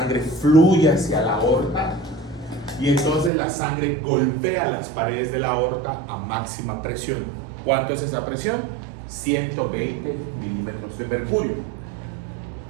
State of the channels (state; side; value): drops out; left; at 3.3 s